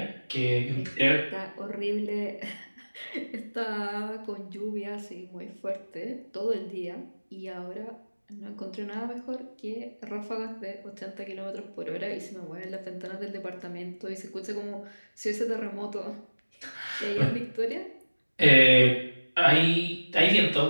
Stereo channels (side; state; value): both; inverted; correlation -1.00